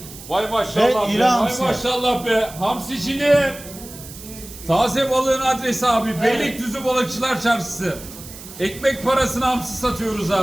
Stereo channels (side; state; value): right; noise; hiss, 15 dB below the sound